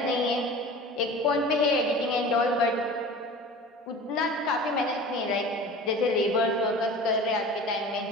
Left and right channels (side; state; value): both; normal; correlation 0.38